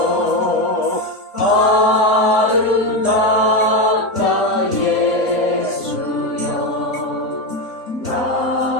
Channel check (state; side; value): normal; both; correlation 0.13